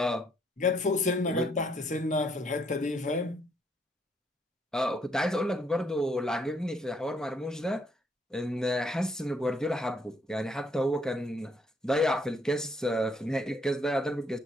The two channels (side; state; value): both; normal; correlation 0.69